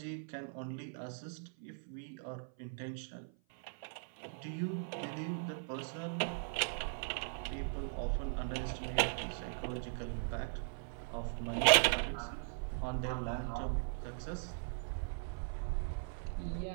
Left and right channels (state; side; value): silent; left; 52 dB below the other